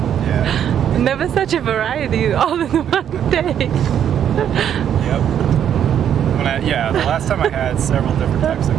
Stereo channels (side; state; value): left; quieter; 9.4 dB